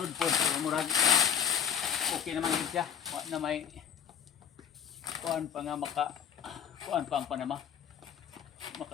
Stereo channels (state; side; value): quieter; right; 8.6 dB